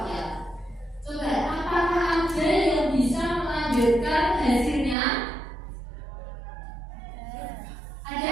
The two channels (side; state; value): left; drops out; at 5.0 s